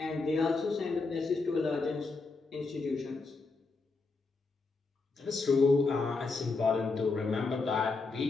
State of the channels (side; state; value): right; quieter; 3.9 dB